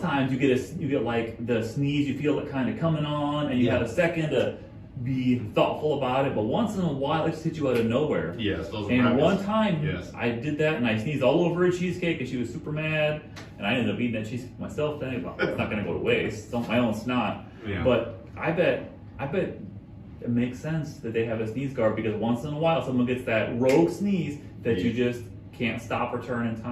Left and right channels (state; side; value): identical; both; correlation 1.00